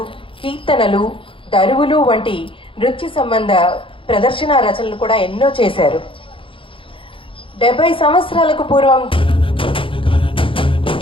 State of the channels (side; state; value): right; late; 0.25 ms